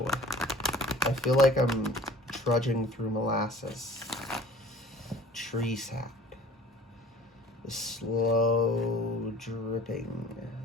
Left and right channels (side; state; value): both; normal; correlation 0.47